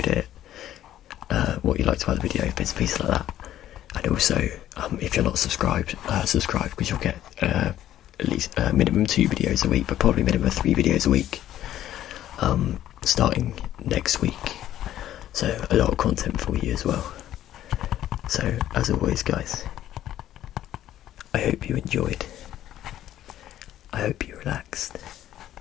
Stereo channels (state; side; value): quieter; right; 12.4 dB